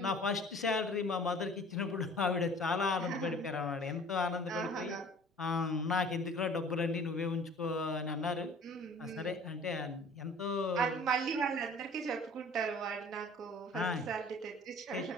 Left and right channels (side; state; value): both; normal; correlation 0.48